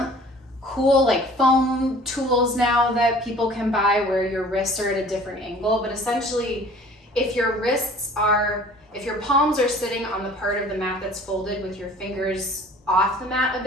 cool like foam tools now that people can buy where your wrists are at a different angle, but essentially if your palms are sitting on the part of the mat that's folded with your fingers off the mat a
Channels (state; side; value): normal; both; correlation 0.49